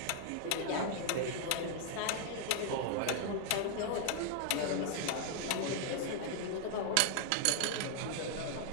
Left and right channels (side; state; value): both; different; correlation 0.00